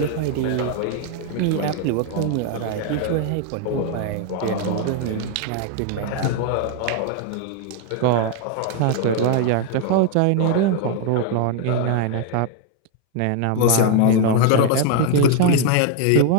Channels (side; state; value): both; different; correlation 0.00